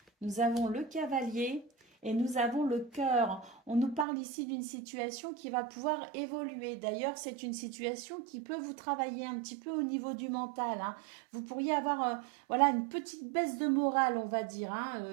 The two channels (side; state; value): left; drops out; at 4.0 s